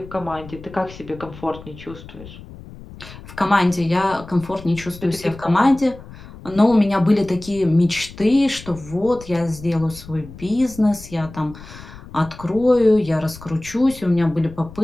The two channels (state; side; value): noise; left; rumble, 17 dB below the sound